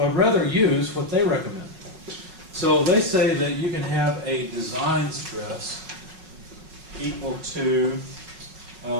I'd rather use what they recommend. So they say that you can have a design stress equal to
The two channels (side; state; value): left; late; 5.3 ms